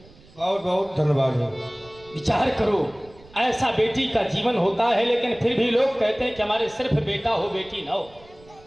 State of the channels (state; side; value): noise; right; rumble, 25 dB below the sound